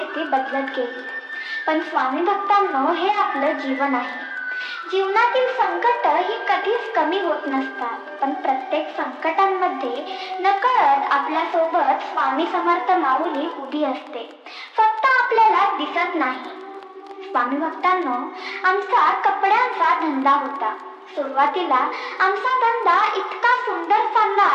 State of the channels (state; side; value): identical; both; correlation 1.00